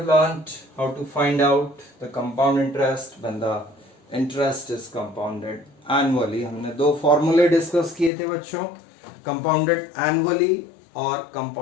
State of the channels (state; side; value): drops out; right; at 8.1 s